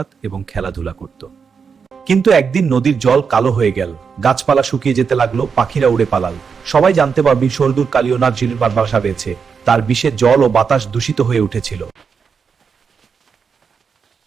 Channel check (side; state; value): left; quieter; 6.0 dB